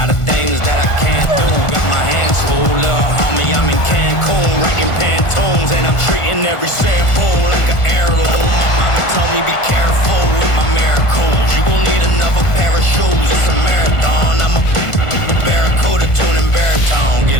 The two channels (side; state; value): right; late; 1.5 ms